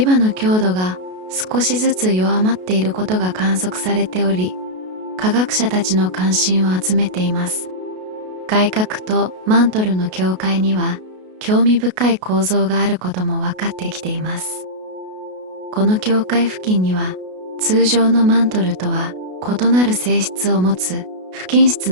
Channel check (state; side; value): late; left; 33 ms